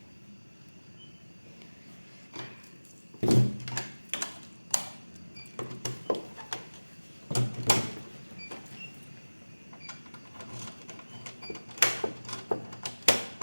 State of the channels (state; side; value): inverted; both; correlation -1.00